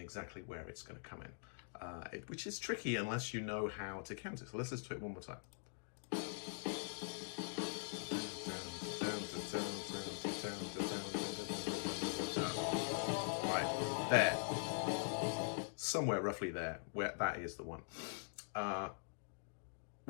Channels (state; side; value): silent; right; digital silence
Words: where it's going to come in, which is tricky unless you know how to count it. So let's listen to it one more time. Right, there. Somewhere roughly there, where that is the one. Well,